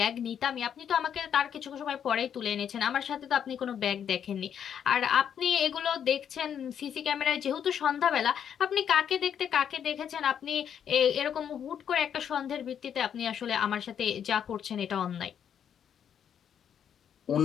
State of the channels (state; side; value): quieter; right; 8.6 dB